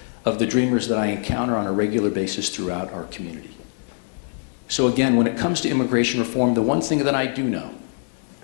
of the dreamers that I encounter on a regular basis throughout our community. So again, when it comes to immigration reform, the one thing that I do know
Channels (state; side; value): silent; right; 63 dB below the other